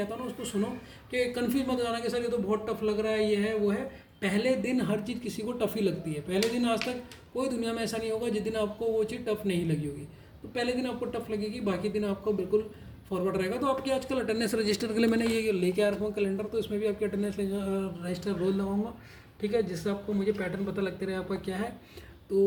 हूँ ना उसको सुनो, कि कन्फ्यूज मत हो जाना कि सर ये तो बहुत टफ लग रहा है, ये है वो है। पहले दिन हर चीज़ किसी को टफ ही लगती है, पहले दिन आज तक कोई दुनिया में ऐसा नहीं होगा जिस दिन आपको वो चीज़ टफ नहीं लगी होगी। तो पहले दिन आपको टफ लगेगी, बाकी दिन आपको बिल्कुल फॉरवर्ड रहेगा। तो आपकी आजकल अटेंडेंस रजिस्टर के लिए मैंने ये लेके आ रखा हूँ कैलेंडर, तो इसमें भी आपकी अटेंडेंस रजिस्टर रोज लगाऊंगा, ठीक है, जिससे आपको मुझे पैटर्न पता लगते रहे आपका क्या है।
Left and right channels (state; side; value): identical; both; correlation 1.00